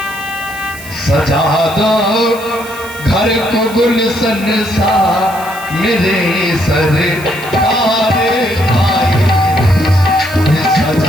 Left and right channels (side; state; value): right; noise; hiss, 16 dB below the sound